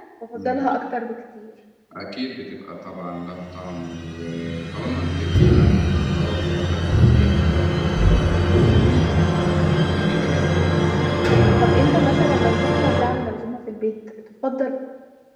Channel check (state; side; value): identical; both; correlation 1.00